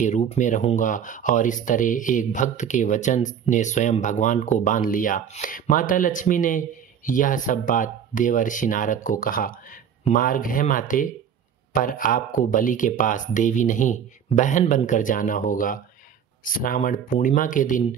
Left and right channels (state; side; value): quieter; left; 8.3 dB